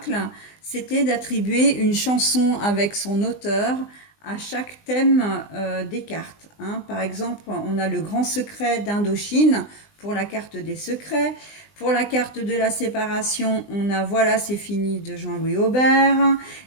c'était d'attribuer une chanson avec son auteur à chaque thème des cartes. Hein. Par exemple, on a le grand secret d'Indochine pour la carte des secrets. Pour la carte de la séparation, on a Voilà, c'est fini de Jean-Louis Aubert.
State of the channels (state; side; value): late; right; 20 ms